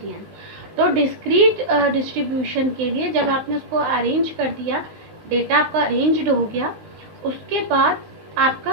तो डिस्क्रीट डिस्ट्रीब्यूशन के लिए जब आपने उसको अरेंज कर दिया, डेटा आपका अरेंज्ड हो गया, उसके बाद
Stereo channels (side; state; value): left; late; 19 ms